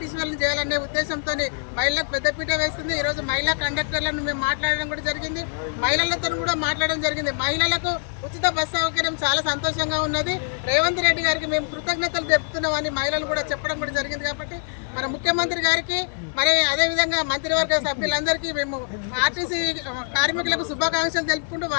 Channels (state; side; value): silent; right; digital silence